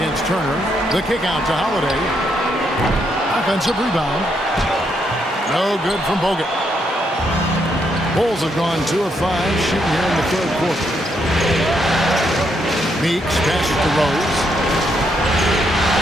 Turner. The kick out to Holiday. Off Offensive rebound. No good from Bogut. Bulls have gone 2 of 5 shooting here in the third quarter. Meeks passes to Rose.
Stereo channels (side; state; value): both; normal; correlation 0.76